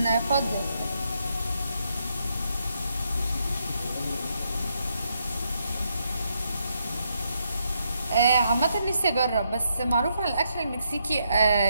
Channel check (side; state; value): both; inverted; correlation -0.78